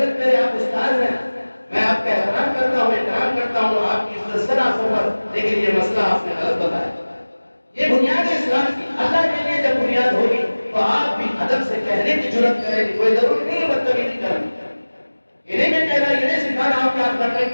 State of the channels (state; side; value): inverted; both; correlation -1.00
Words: میرے آپ استاد ہیں، میں آپ کا احترام کرتا ہوں، احترام کرتا ہوں، آپ کی عزت سے نہ سفر، لیکن یہ مسئلہ آپ نے غلط بتایا۔ یہ بنیاد ہے اسلام کی، اللہ کے لیے جب بنیاد ہوگی تو آپ بھی ادب سے کہنے کی جرأت کریں گے، کوئی ضروری نہیں ہے بدتمیزی کرنی، یہ نہیں میں کہہ رہا، یہ نہیں سکھا رہا ہوں کہ آپ کرنے